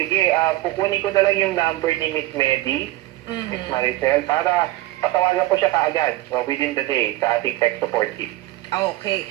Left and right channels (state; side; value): quieter; left; 17.2 dB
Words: kukunin ko na lang yung number ni Miss Medi, Miss Maricel, para patawagan ko siya kaagad within the day sa ating tech support team. Okay.